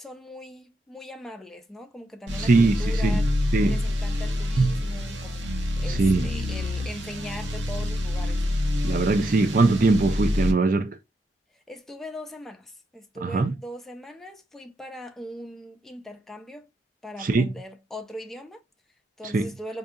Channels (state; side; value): normal; both; correlation 0.82